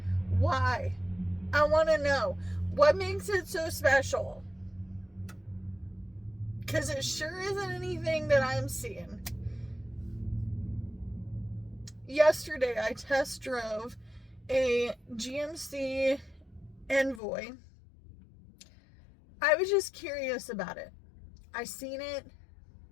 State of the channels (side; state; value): right; drops out; at 17.2 s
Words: I want to know. What makes it so special? Because it sure isn't anything that I'm seeing. Yesterday, I test drove a GMC Envoy. I was just curious about it. I seen it